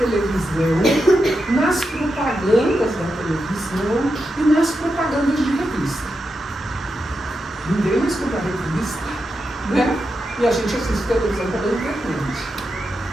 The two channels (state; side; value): normal; both; correlation 0.87